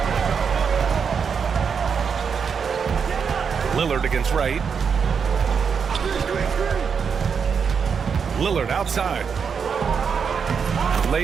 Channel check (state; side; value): quieter; left; 6.4 dB